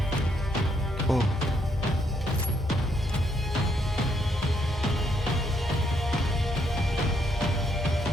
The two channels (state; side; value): normal; both; correlation 0.74